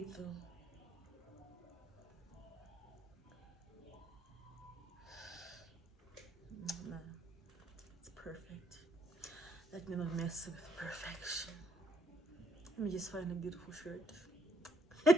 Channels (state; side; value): normal; both; correlation 0.70